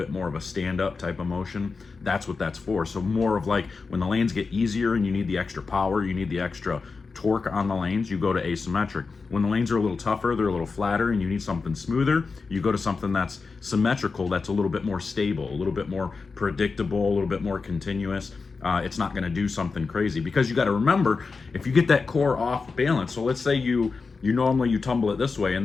more of a stand-up type of motion, that's what that's for. So more of like when the lanes get easier and you need the extra power, you need the extra torque on the lanes, you go to asymmetric. When the lanes are a little tougher, they're a little flatter, and you need something smoother, you go to something that's symmetrical, that's a little bit more stable, a little bit more predictable, a little bit more continuous. It's not going to do something crazy, because you got to remember, if you get that core off balance, so let's say you normally tumble it this way, and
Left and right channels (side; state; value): right; quieter; 4.5 dB